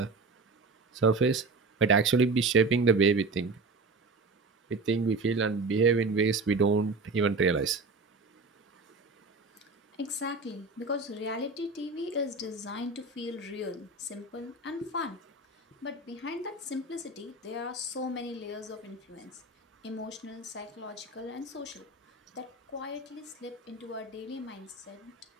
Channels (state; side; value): quieter; left; 3.5 dB